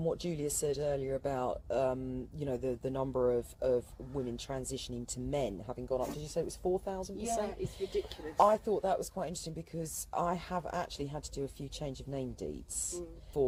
what Julia said earlier about the number of women transitioning to men having gone up. Did you say it was 4,000%? Yeah, it's ridiculous. I thought that was quite interesting because I have actually had to do a few change of name deeds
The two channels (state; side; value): identical; both; correlation 1.00